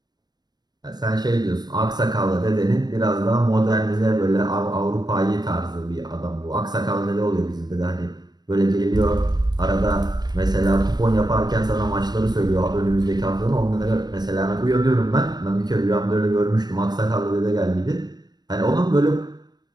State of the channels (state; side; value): late; left; 0.20 ms